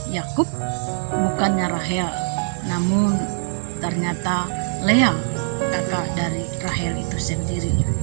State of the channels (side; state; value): left; silent; digital silence